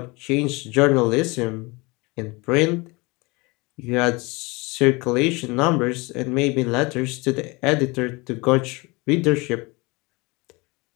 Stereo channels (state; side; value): quieter; right; 25.7 dB